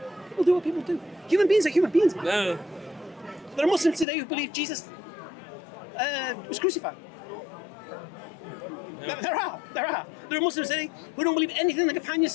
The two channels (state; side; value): drops out; right; at 4.0 s